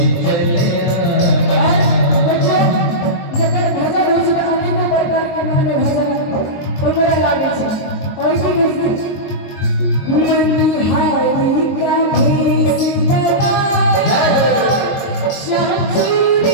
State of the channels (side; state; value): right; late; 22 ms